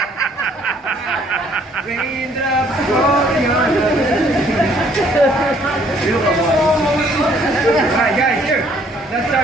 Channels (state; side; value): normal; both; correlation 0.62